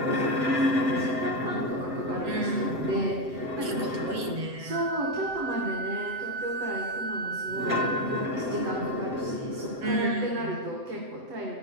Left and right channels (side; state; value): left; late; 7.8 ms